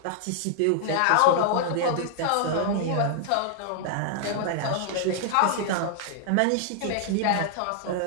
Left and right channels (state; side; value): different; both; correlation -0.01